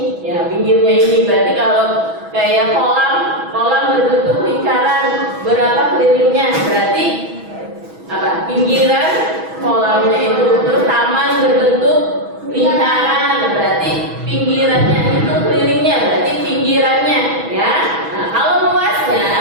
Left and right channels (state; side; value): late; left; 6.1 ms